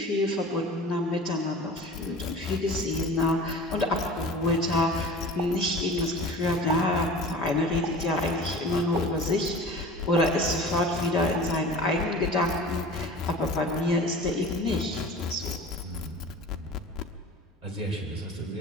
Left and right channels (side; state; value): both; normal; correlation 0.39